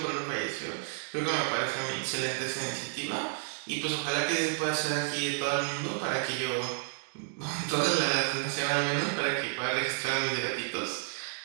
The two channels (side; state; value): left; silent; digital silence